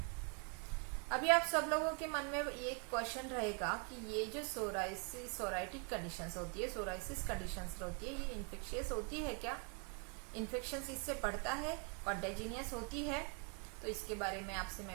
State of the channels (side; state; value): left; quieter; 35.2 dB